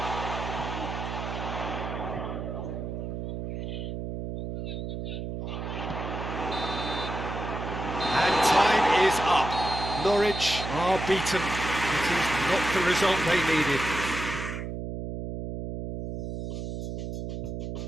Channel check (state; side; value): noise; right; hum, 5 dB below the sound